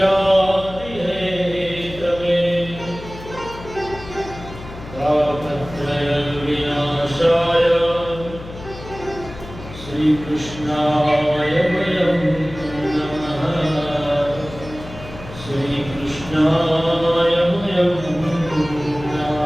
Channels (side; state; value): left; noise; hum, 14 dB below the sound